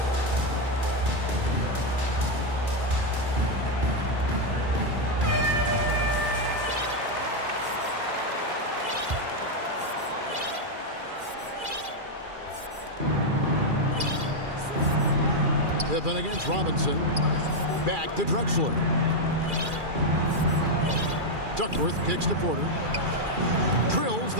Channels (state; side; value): late; left; 2.4 ms